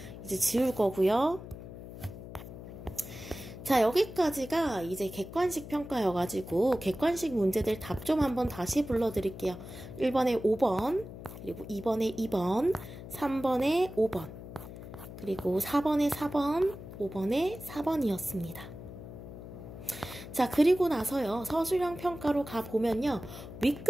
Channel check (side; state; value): left; noise; hum, 12 dB below the sound